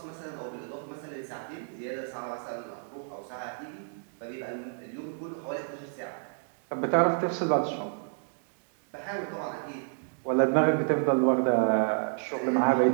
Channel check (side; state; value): left; silent; digital silence